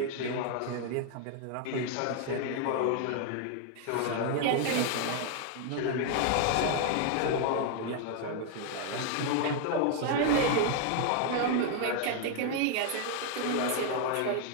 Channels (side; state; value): both; different; correlation 0.00